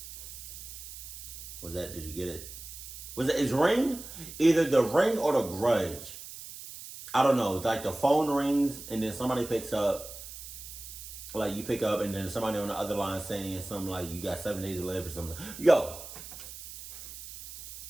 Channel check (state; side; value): noise; right; hiss, 12 dB below the sound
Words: Did you get it? Is ring either the ring or the grudge? I don't know. It's like the phone rings and then somebody picks up. Like you pick up and then somebody on the other line saying something like you got 7 days to live or something. Yo.